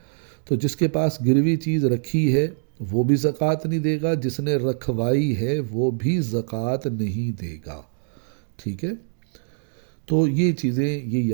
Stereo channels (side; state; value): left; silent; digital silence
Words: تو جس کے پاس گروی چیز رکھی ہے وہ بھی زکوٰۃ نہیں دے گا، جس نے رکھوائی ہے وہ بھی زکوٰۃ نہیں دے گا، ٹھیک ہے۔ تو یہ چیزیں یہ